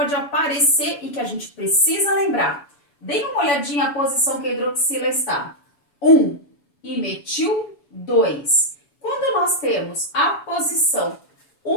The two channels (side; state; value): right; late; 7.0 ms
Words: aparecer e que a gente precisa lembrar. Dê uma olhadinha a posição que a hidroxila está. 1 e metil 2. Quando nós temos a posição